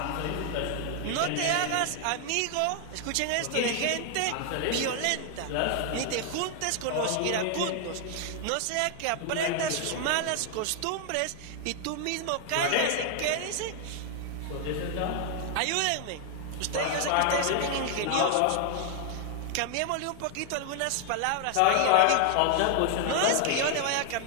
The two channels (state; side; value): different; both; correlation 0.00